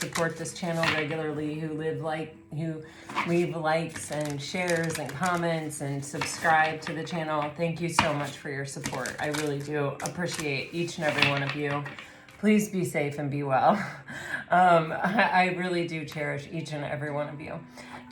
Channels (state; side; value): identical; both; correlation 1.00